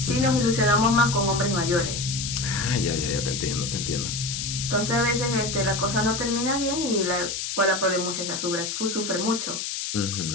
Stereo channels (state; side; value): noise; left; hiss, 4 dB below the sound